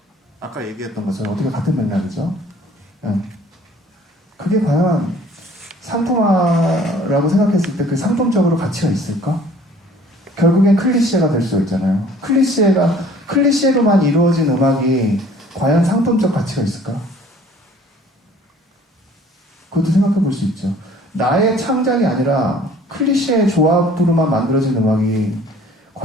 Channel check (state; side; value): normal; both; correlation 0.53